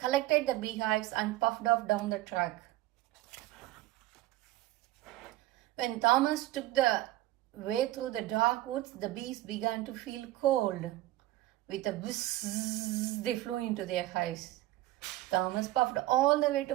the beehives and puffed off down the track. When Thomas took the way through the dark woods, the bees began to feel cold. With a whizz, they flew into their hives. Thomas puffed all the way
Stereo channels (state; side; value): quieter; left; 16.5 dB